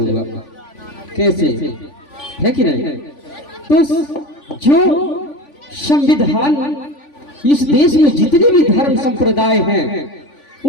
कैसे, है कि नहीं? तो जो संविधान, इस देश में जितने भी धर्म संप्रदाय हैं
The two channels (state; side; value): late; right; 3.5 ms